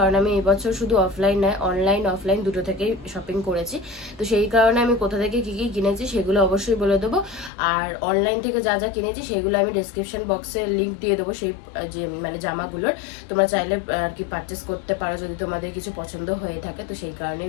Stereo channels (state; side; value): drops out; right; at 7.5 s